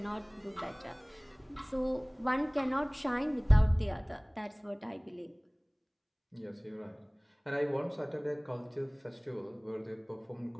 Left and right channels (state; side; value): identical; both; correlation 1.00